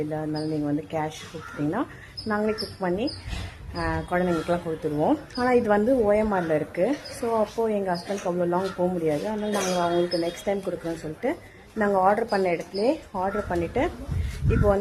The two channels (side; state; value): both; identical; correlation 1.00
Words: இல்லை, அதனால நீங்கள் வந்து கேஷ் கொடுத்துட்டிங்கன்னா நாங்களே குக் பண்ணி குழந்தைங்களுக்குலாம் கொடுத்துருவோம். ஆனால் இது வந்து ஓஎம்ஆரில் இருக்குது. ஸோ அப்போது எங்கள் ஹஸ்பண்ட்க்கு அவ்வளோ லாங் போக முடியாது. அதனால் நாங்கள் அவங்களுக்கு நெக்ஸ்ட் டைம் கொடுக்குறோன்னு சொல்லிட்டு நாங்கள் ஆர்டர் பண்ண இடத்துல ஆர்டர் பண்ணிவிட்டு இப்போ